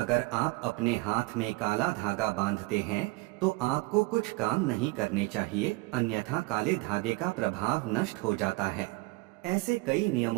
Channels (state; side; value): quieter; left; 23.6 dB